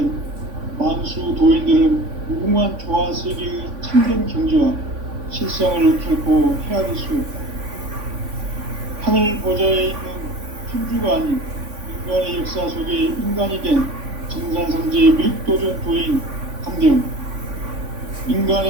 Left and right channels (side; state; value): left; late; 3.5 ms